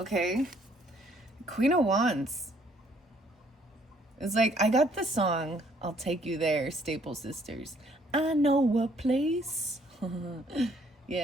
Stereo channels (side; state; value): both; normal; correlation 0.64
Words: Queen of Wands. It's like, I got the song, I'll Take You There, Staple Sisters. I know a place.